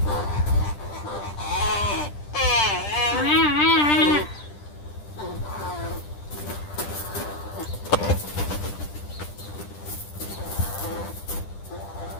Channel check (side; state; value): right; late; 10 ms